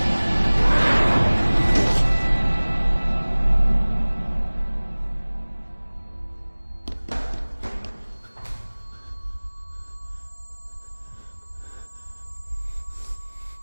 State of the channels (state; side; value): inverted; both; correlation -1.00